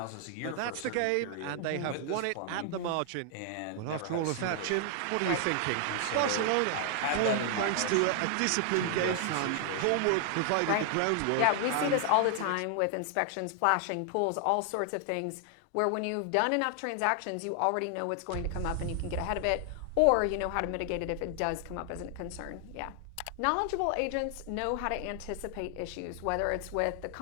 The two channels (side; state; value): both; different; correlation 0.00